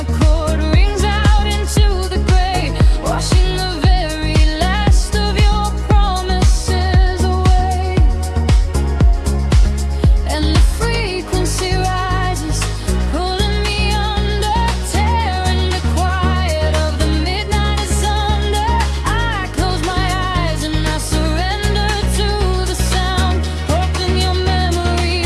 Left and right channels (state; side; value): identical; both; correlation 1.00